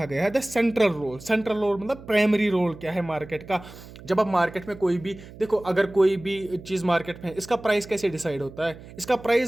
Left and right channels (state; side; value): noise; right; hum, 17 dB below the sound